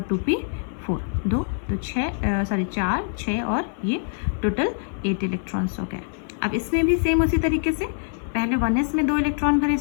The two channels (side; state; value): right; silent; 59 dB below the other